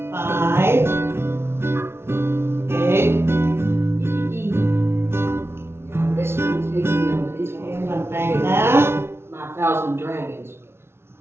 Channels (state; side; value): late; left; 0.12 ms